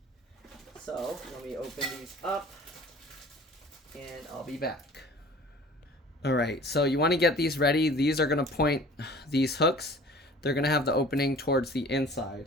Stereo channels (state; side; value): normal; both; correlation 0.46